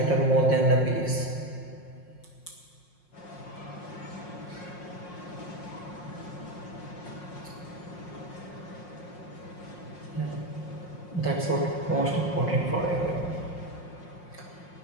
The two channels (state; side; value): late; right; 5.6 ms